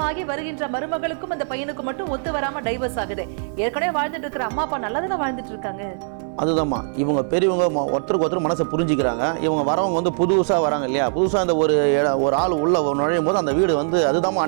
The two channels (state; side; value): silent; left; 64 dB below the other